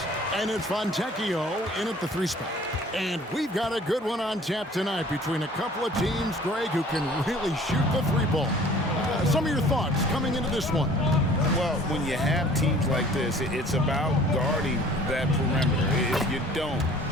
And it's Fontecchio in at the 3 spot. And we've got a good one on tap tonight between a couple of teams, Greg, who can really shoot the 3-ball. Some of your thoughts coming into this one. Well, when you have teams like this, it's about guarding that perimeter. If you don't,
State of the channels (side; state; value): both; normal; correlation 0.51